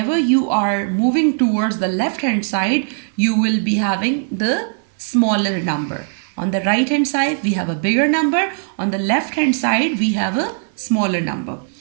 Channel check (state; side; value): silent; left; digital silence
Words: you are moving towards the left hand side you will be having the smaller number. On the right hand side we have a bigger number, on the left hand side we have a smaller number.